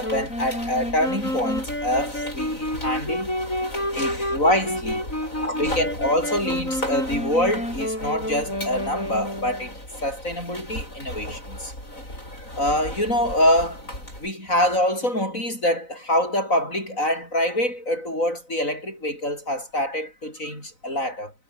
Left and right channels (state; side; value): late; right; 4.0 ms